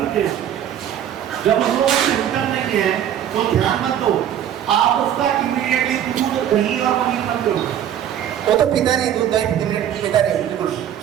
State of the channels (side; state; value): left; quieter; 10.3 dB